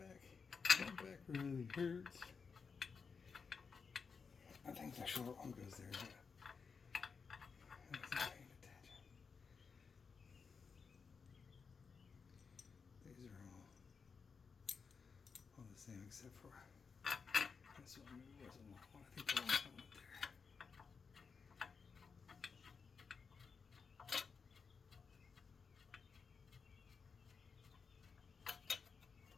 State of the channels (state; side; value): quieter; right; 5.5 dB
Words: That back really hurts. I think the short one goes there, but I wasn't paying attention. These are all the same except for this one. Maybe wasn't one. I think the one went there.